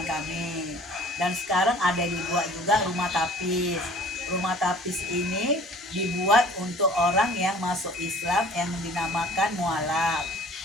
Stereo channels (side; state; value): both; normal; correlation 0.50